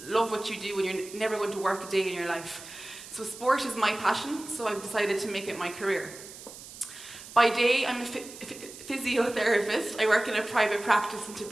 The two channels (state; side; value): noise; right; hiss, 15 dB below the sound